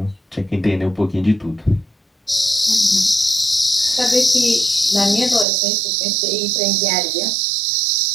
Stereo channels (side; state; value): left; drops out; at 5.5 s